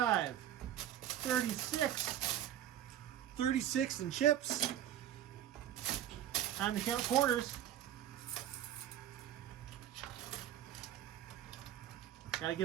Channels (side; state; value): left; quieter; 11.3 dB